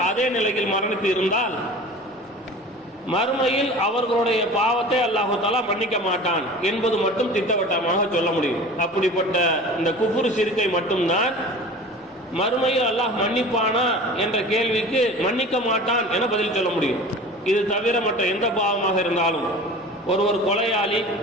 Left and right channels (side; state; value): both; normal; correlation 0.39